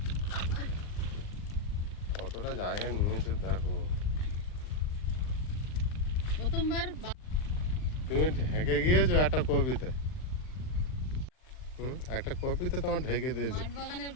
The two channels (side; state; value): right; late; 39 ms